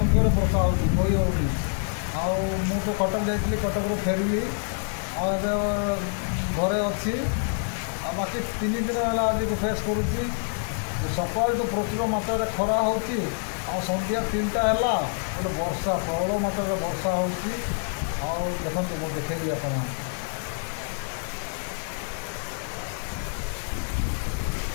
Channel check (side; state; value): right; silent; 60 dB below the other